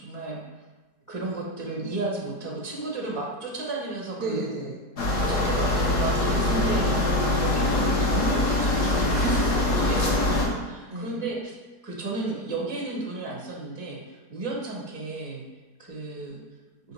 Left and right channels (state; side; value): late; right; 4.8 ms